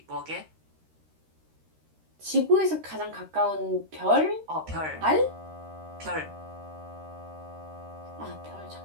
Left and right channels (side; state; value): left; late; 13 ms